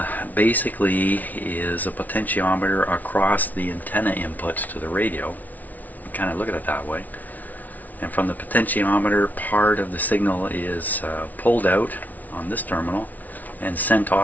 basically is a potentiometer across the antenna inputs to the radio. You kind of look at it that way. And from the potentiometer, part of the signal is pulled out on this terminal and sent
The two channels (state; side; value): late; right; 0.076 ms